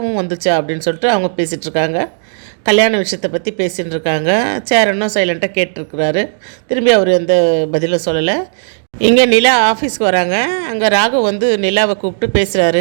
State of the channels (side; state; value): left; silent; digital silence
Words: வந்துச்சா அப்படின்னு சொல்லிட்டு அவங்க பேசிகிட்ருக்காங்க. கல்யாண விஷயத்தை பற்றி பேசிகிட்டு இருக்காங்க. சேரனும் சைலண்ட்டாக கேட்டிருக்கிறாரு. திரும்பி அவர் எந்த பதிலும் சொல்லலை. இங்கே நிலா ஆஃபீஸ்க்கு வராங்க. அங்கே ராகு வந்து நிலாவை கூப்பிட்டு